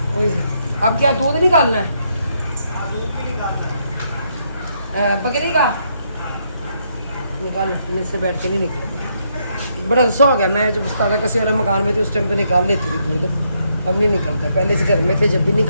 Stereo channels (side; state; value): both; inverted; correlation -0.75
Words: अब क्या दूध निकालना है? दूध भी निकालना है, बकरी का निकाल, मेरे से बैठ के नहीं निकले, बड़ा गुस्सा हो गया। मैं जब उस्ताद कसी वाला मकान में थी उस टाइम पे निकाल लेती थी दूध, अब नहीं निकलता। पहले से घर में थे जब भी